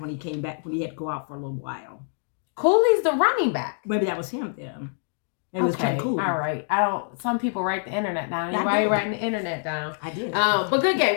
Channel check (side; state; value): right; silent; digital silence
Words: when he came back, when he had to go out for a little while. Cooley's the running back. Maybe that was him then. It was Ken Cooley. All right. Some people write the internet down. Why are you writing the internet down? I did. But good game.